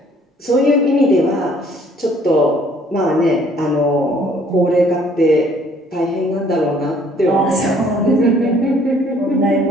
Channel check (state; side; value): normal; both; correlation 0.60